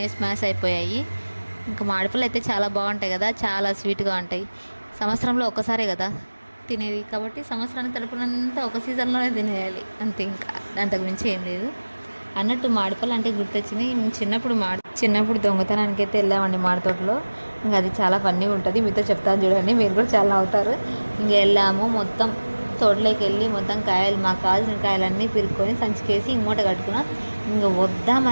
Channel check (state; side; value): inverted; both; correlation -1.00